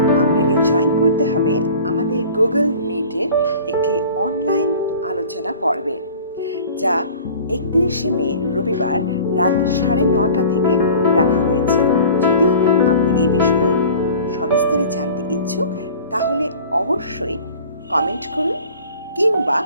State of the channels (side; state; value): both; inverted; correlation -0.43